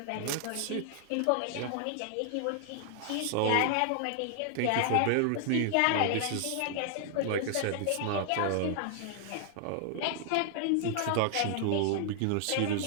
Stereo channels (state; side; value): different; both; correlation 0.00